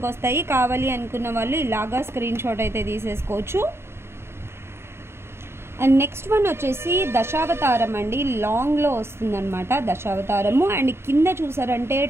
వస్తాయి. కావాలి అనుకున్న వాళ్ళు ఇలాగా స్క్రీన్ షాట్ అయితే తీసేసుకోవచ్చు. అండ్ నెక్స్ట్ వన్ వచ్చేసి దశావతారం అండి. లాంగ్లో వస్తుందన్నమాట దశావతారము. అండ్ కింద చూసారంటే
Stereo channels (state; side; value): late; left; 0.12 ms